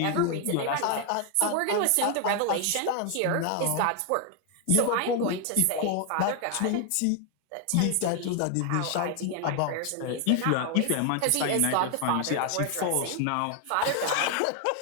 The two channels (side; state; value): both; different; correlation 0.00